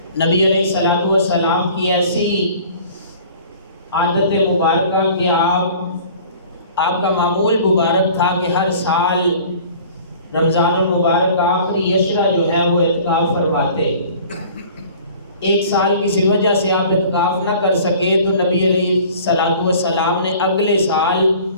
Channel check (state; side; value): inverted; both; correlation -0.48